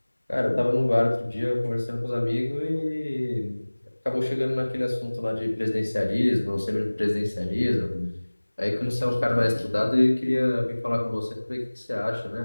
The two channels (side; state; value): both; inverted; correlation -1.00